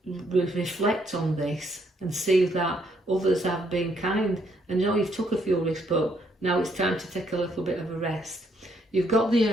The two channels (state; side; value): normal; both; correlation 0.71